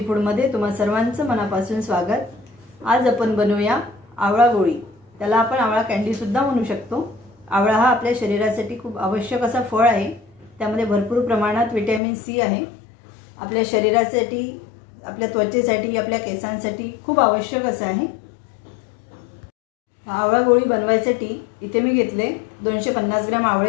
फूडमध्ये तुम्हा सर्वांचं मनापासून स्वागत। आज आपण बनवूया आवळा गोळी। त्याला आपण आवळा कँडी सुद्धा म्हणू शकतो। आवळा हा आपल्या शरीरासाठी खूप आवश्यक असा फळ आहे। त्यामध्ये भरपूर प्रमाणात व्हिटॅमिन सी आहे। आपल्या शरीरासाठी, आपल्या त्वचेसाठी, आपल्या केसांसाठी खूप आवश्यक असं आहे। आवळा गोळी बनवायसाठी इथे मी घेतले 250 ग्रॅम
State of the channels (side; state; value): right; drops out; at 12.0 s